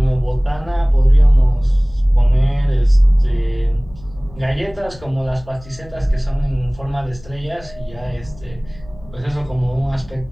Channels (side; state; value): left; noise; hum, 21 dB below the sound